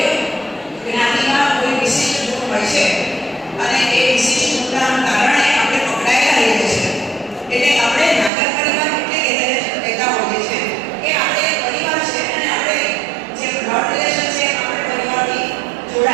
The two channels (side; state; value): left; drops out; at 8.3 s